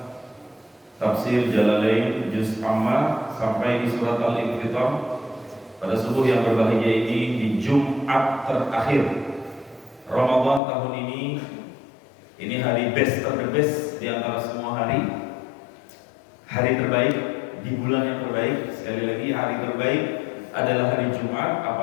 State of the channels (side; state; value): right; drops out; at 10.6 s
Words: tafsir Jalalain juz amma sampai di surat Al-Infitar. Pada subuh yang berbahagia ini, di Jumat terakhir Ramadan tahun ini hari best terbest di antara semua hari terbaik di bulan yang terbaik. Sekali lagi, hari terbaik adalah hari Jumat,